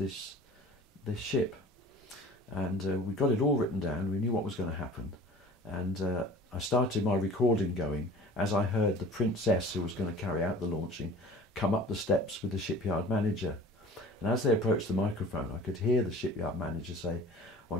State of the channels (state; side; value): normal; both; correlation 0.43